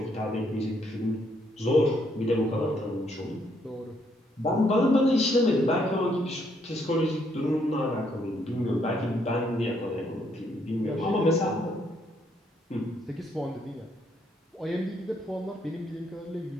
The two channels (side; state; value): both; normal; correlation 0.72